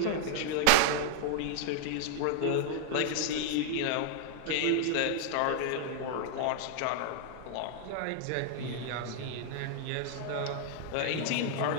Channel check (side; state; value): both; different; correlation -0.01